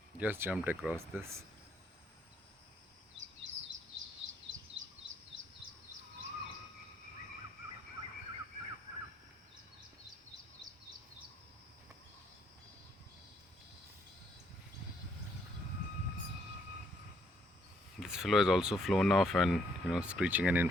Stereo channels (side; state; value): both; normal; correlation 0.70